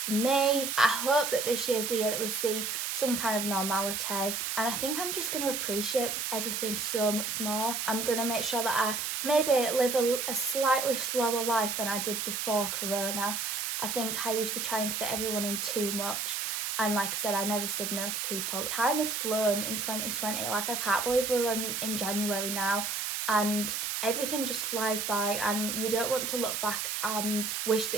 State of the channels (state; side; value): noise; right; hiss, 2 dB below the sound